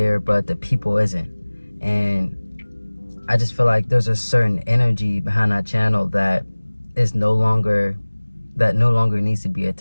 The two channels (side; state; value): both; inverted; correlation -1.00